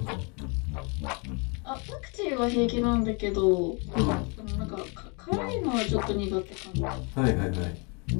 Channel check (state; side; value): quieter; right; 32.8 dB